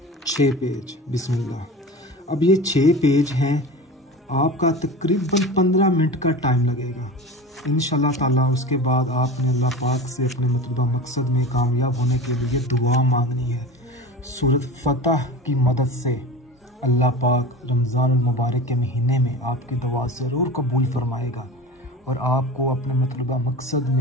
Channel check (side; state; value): both; normal; correlation 0.32